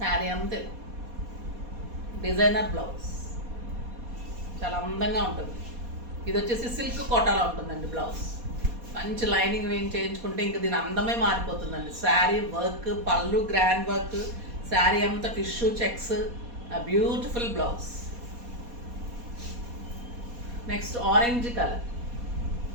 అంతే డిజైనర్ బ్లౌజ్, చాలా అందంగా ఉంటుంది. ఇది వచ్చేసి సిల్క్ కోటాలో ఉంటుందండి బ్లౌజ్. మంచి లైనింగ్ వేయం చేయించుకుంటే ఇంకా దీని అందమే మారిపోతుందండి. శారీ వర్క్, పళ్ళు గ్రాండ్ వర్క్, శారీ అంతా tissue checks, beautiful blouse. Next orange colour.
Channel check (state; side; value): late; left; 4.2 ms